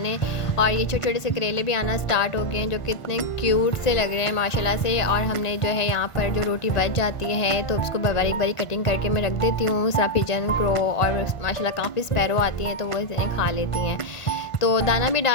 और ये छोटे छोटे से करेले भी आना स्टार्ट हो गए हैं जो कितने क्यूट से लग रहे हैं माशाल्लाह से। और हमने जो है यहाँ पर जो रोटी बच जाती है तो उसको बारीक बारीक कटिंग करके मैं रख देती हूँ। सारा पिजन क्रो और माशाल्लाह काफ़ी स्पैरो आती हैं तो वो इन्हें खा लेती हैं, तो दाना भी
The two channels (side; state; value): right; late; 1.5 ms